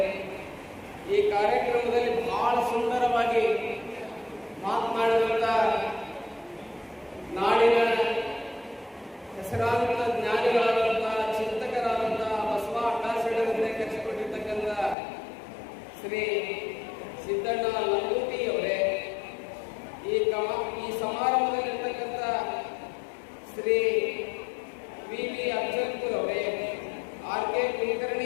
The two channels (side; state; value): right; drops out; at 15.0 s